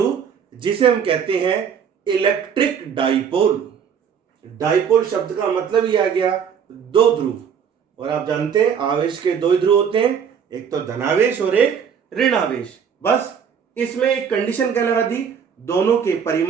जिसे हम कहते हैं इलेक्ट्रिक डाइपोल। डाइपोल शब्द का मतलब ही आ गया दो ध्रुव, और आप जानते हैं आवेश के दो ध्रुव होते हैं, एक तो धनावेश और एक ऋणावेश। बस इसमें एक कंडीशन क्या लगा दी? दोनों के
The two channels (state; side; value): quieter; left; 7.4 dB